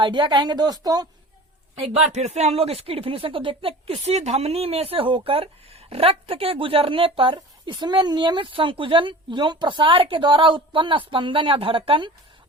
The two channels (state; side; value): normal; both; correlation 0.39